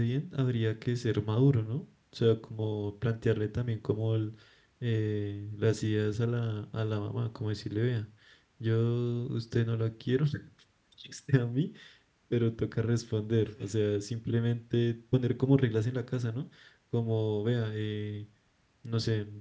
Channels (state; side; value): identical; both; correlation 1.00